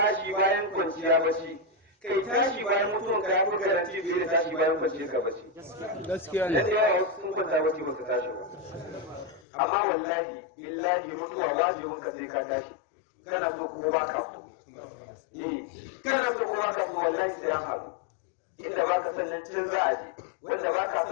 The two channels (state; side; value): drops out; right; at 9.4 s